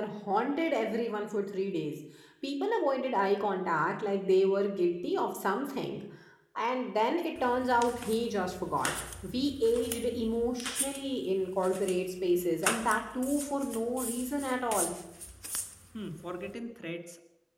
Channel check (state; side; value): identical; both; correlation 1.00